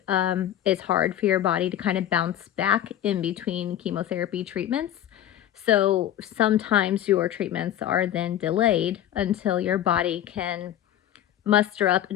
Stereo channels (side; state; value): right; quieter; 11.7 dB